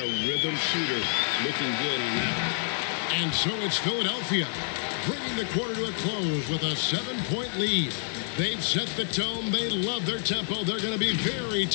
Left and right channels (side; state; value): right; silent; digital silence